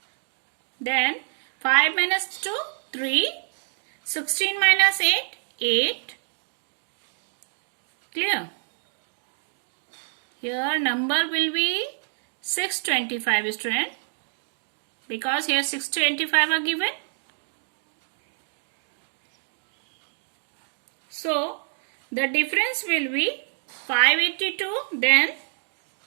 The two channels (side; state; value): left; silent; digital silence